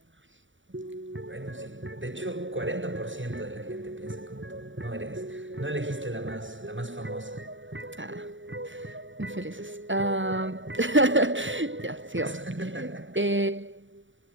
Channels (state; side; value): late; left; 0.56 ms